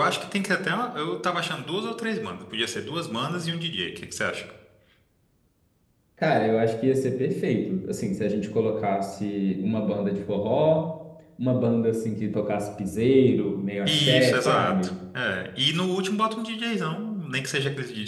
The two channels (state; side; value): identical; both; correlation 1.00